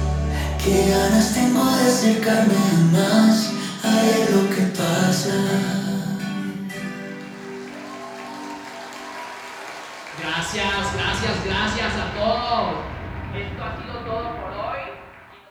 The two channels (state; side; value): identical; both; correlation 1.00